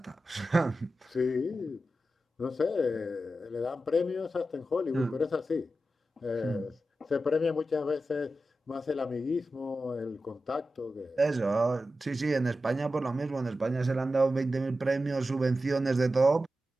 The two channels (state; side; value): normal; both; correlation 0.91